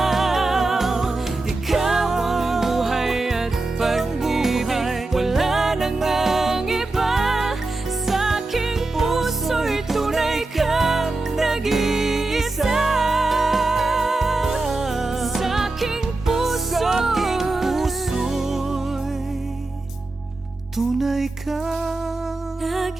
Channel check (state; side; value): quieter; left; 3.1 dB